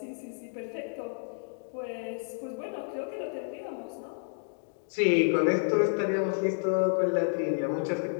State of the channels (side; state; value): right; silent; digital silence